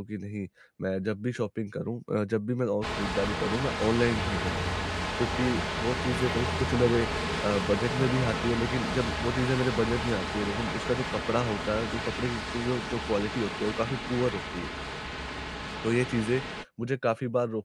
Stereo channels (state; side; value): identical; both; correlation 1.00